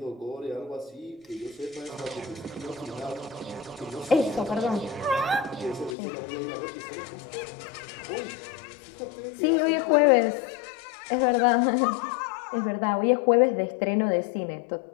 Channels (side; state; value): right; drops out; at 6.0 s